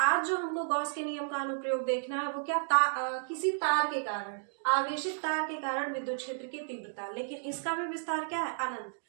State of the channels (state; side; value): silent; left; digital silence